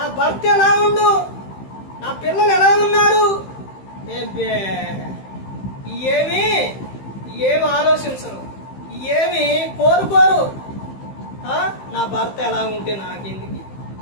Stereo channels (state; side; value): late; right; 15 ms